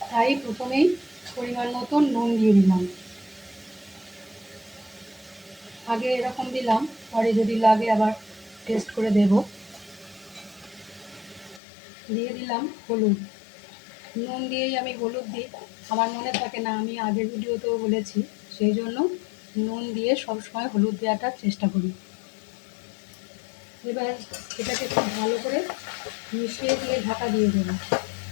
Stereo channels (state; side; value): drops out; right; at 11.6 s